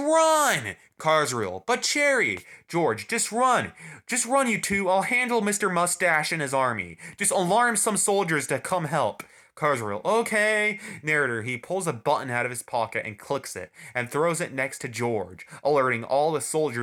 Carswell, but Cherry! George, just run! Just run, you two! I'll handle Mr. Mustache and his army. Just alarm some soldiers to come help. Carswell, okay. Narrator, he pulls a button out of his pocket and clicks it, and throws it next to George, alerting all the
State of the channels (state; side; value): identical; both; correlation 1.00